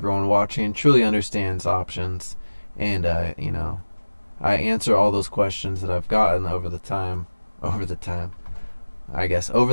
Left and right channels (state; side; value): inverted; both; correlation -1.00